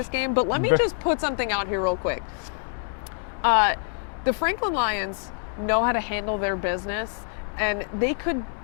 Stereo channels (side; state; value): right; silent; 61 dB below the other